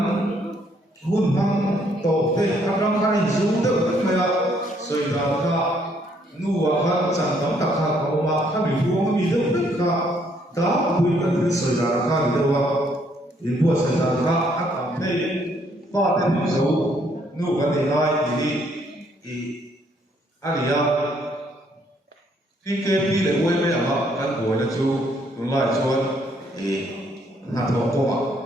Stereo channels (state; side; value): normal; both; correlation 0.68